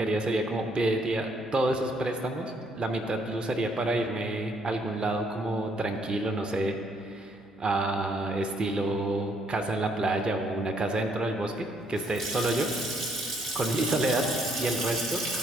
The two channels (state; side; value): normal; both; correlation 0.69